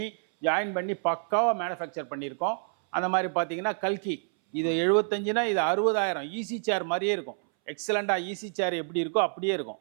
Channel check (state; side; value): silent; left; 59 dB below the other